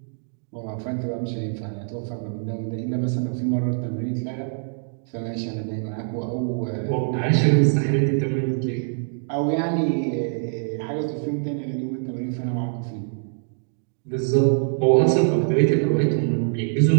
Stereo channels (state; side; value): silent; left; digital silence